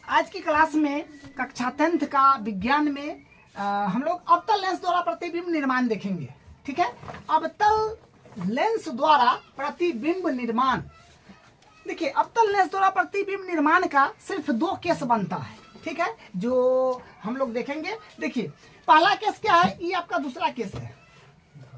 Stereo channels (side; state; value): both; identical; correlation 1.00